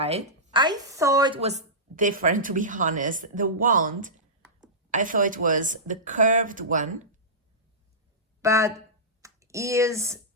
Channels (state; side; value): normal; both; correlation -0.16